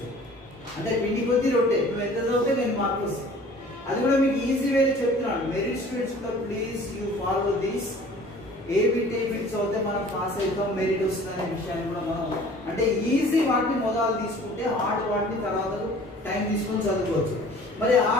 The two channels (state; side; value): normal; both; correlation 0.49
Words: అంటే పిండి కొద్ది రొట్టె నువ్వు ఎంత చదివితే 10 మార్కులు వస్తాయి. అది కూడా మీకు ఈజీ వేలో చెప్తున్నాను. మెరిట్ స్టూడెంట్స్ కూడా please you follow this. A bit చదివితే మనం పాస్ అవుతాం మెరిట్ వస్తుంది అనే విషయాన్ని కూడా మనం అంటే ఈజీ వాటిని మొదలు తీసుకుంటే హార్డ్ వాటిని తర్వాత టైం తీసుకొని చదువుకోవచ్చు. మరి